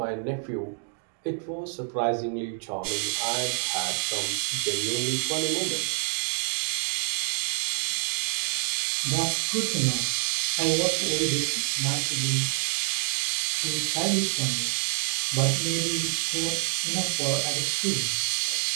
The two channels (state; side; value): silent; left; 60 dB below the other